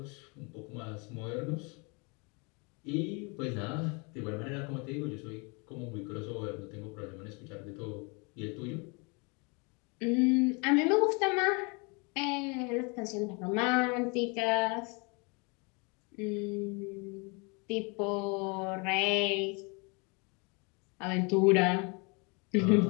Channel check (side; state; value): right; quieter; 31.4 dB